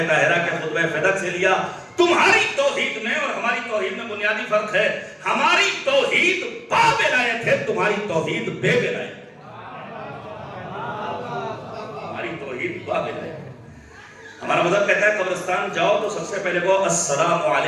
طاہرہ کے خطبہ فدق سے لیا. تمہاری توحید میں اور ہماری توحید میں بنیادی فرق ہے. ہماری توحید با ولایت ہے، تمہاری توحید بے ولایت. ہمارا مذہب کہتا ہے قبرستان جاؤ تو سب سے پہلے کہو السلام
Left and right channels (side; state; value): both; identical; correlation 1.00